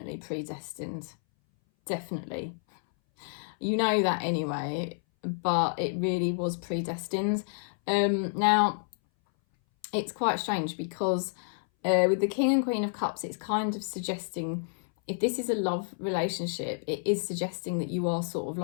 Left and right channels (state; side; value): silent; right; 58 dB below the other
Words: predestined. Definitely. You know that anyway, but it really was predestined. Now, it's quite strange because with the King and Queen of Cups, it's kind of suggesting, if this is a love relationship, it is suggesting that you are sort of